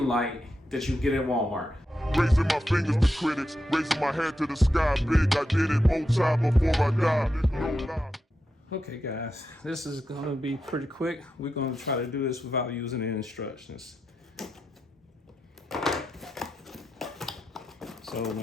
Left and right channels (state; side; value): normal; both; correlation 0.87